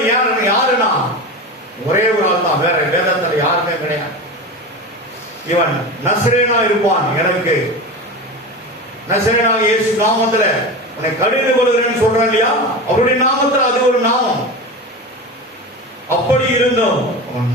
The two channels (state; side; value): normal; both; correlation 0.26